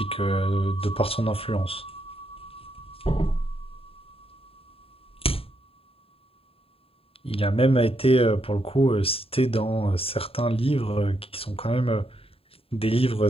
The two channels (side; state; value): right; late; 0.27 ms